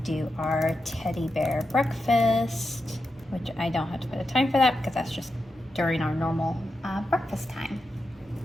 our teddy bear breakfast, which I don't have to put a time for that because that's just during our normal breakfast time.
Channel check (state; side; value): normal; both; correlation 0.88